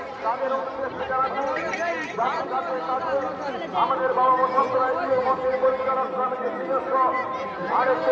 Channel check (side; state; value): both; identical; correlation 1.00